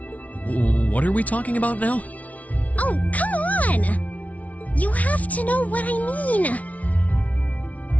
What are we talking about now? Oh, come on! You have to know what I mean.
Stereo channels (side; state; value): right; late; 0.069 ms